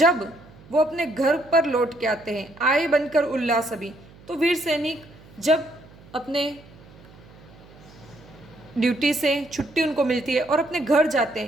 वो अपने घर पर लौट के आते हैं, आए बनकर उल्लास अभी, तो वीर सैनिक जब अपने ड्यूटी से छुट्टी उनको मिलती है और अपने घर जाते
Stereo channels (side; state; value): right; noise; hum, 23 dB below the sound